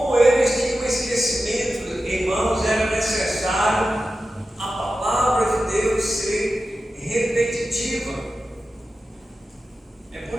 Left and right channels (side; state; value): both; normal; correlation 0.93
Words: eles tinham esquecimento, irmãos, era necessário a palavra de Deus ser repetitiva. É